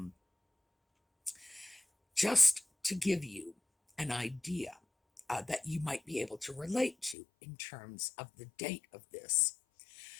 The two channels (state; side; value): drops out; right; at 7.2 s